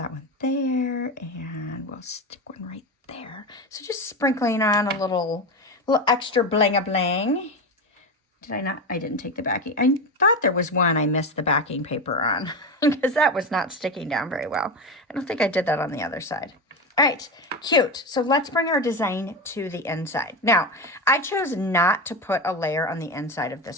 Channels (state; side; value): normal; both; correlation 0.19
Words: one there, and we'll stick one right there. So just sprinkling on a little extra bling-a-bling. Did I not? I didn't take the backing. I thought there was one I missed the backing paper on because that was not sticking down very well. I don't think I did that on the other side. All right, cute. So let's bring our design to the inside. Now, I chose not to put a layer on the inside of